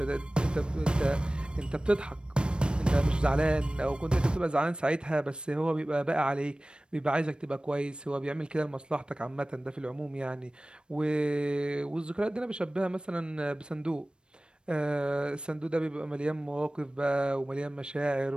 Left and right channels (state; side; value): late; left; 0.054 ms